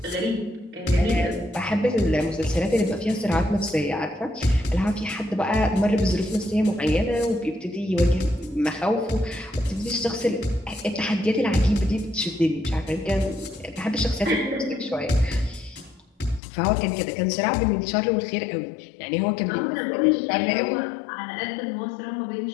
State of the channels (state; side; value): drops out; right; at 16.4 s